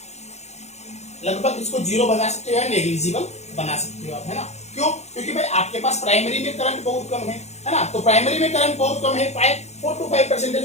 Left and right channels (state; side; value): late; right; 0.32 ms